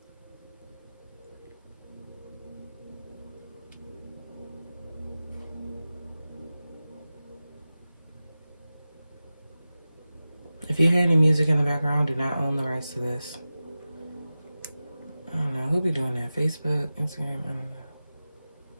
If you hear any music in the background, do not own the rights to this. I don't know. Who be doing that? Facebook, Instagram? I don't know.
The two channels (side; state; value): both; inverted; correlation -0.95